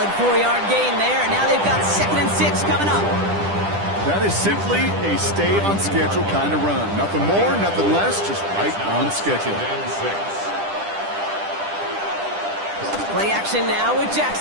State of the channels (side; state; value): left; late; 10 ms